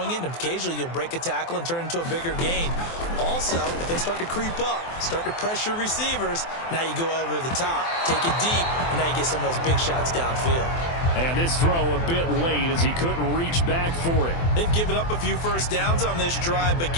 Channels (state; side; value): late; right; 24 ms